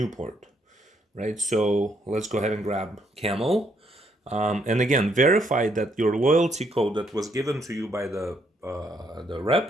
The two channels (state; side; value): normal; both; correlation 0.72